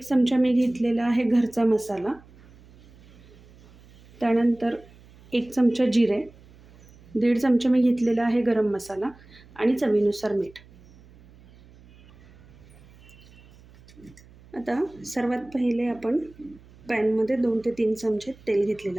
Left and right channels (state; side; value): noise; right; hum, 25 dB below the sound